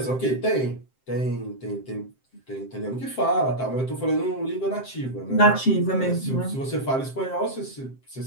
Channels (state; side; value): late; right; 7.7 ms